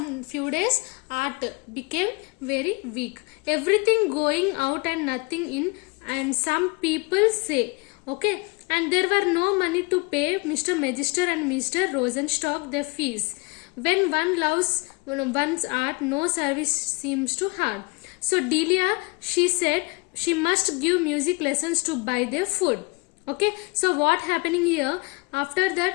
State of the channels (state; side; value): quieter; right; 28.2 dB